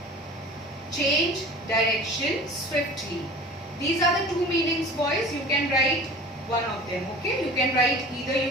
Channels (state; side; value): normal; both; correlation 0.40